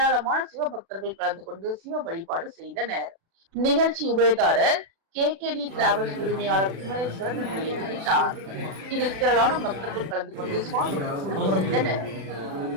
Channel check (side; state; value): left; late; 36 ms